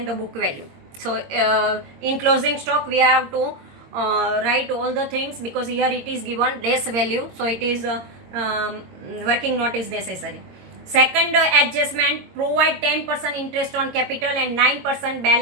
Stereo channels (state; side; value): late; left; 22 ms